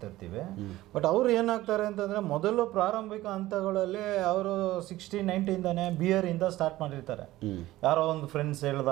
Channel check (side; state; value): left; quieter; 16.5 dB